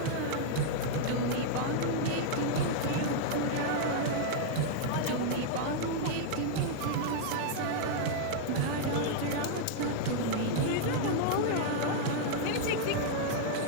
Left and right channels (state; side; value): different; both; correlation -0.01